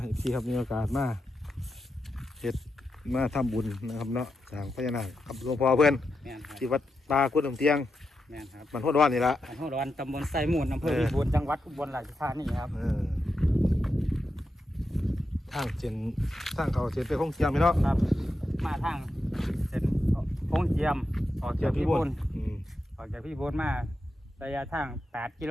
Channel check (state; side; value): normal; both; correlation 0.87